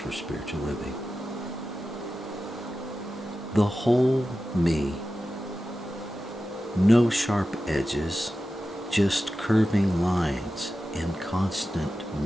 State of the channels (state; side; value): normal; both; correlation 0.93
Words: Spiritual Living. The whole me, no sharp edges, just curving lines in constant